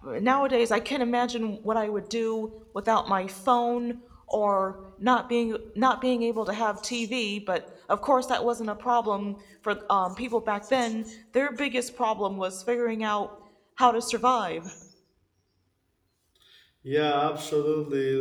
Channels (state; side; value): identical; both; correlation 1.00